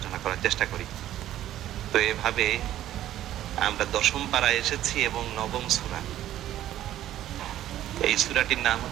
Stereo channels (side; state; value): left; quieter; 12.8 dB